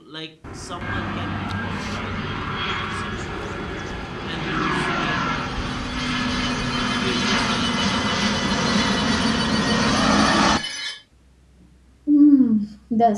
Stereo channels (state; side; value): identical; both; correlation 1.00